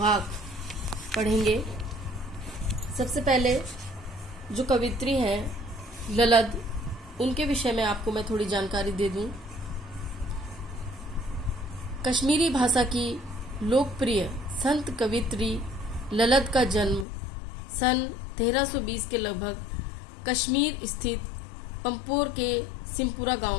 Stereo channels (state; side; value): drops out; right; at 17.1 s